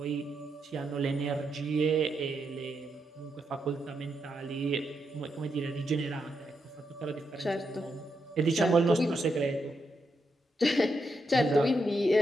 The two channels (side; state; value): both; normal; correlation 0.82